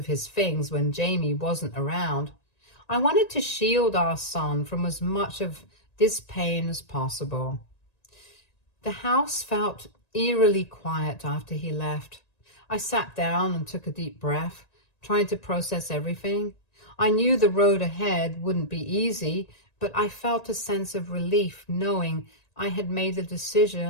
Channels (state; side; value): late; right; 1.9 ms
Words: his things when Jamie wasn't around. I wanted to shield our son from as much of this pain as possible. The house felt eerily quiet after he left. I sat down and took a deep breath, trying to process everything. I knew the road ahead wouldn't be easy, but I felt a sense of relief knowing I had made a